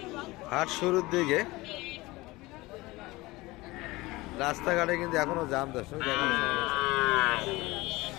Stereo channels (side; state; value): right; quieter; 21.0 dB